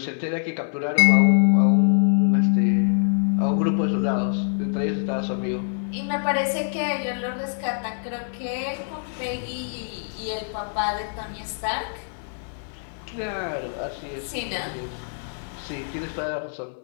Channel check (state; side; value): silent; right; digital silence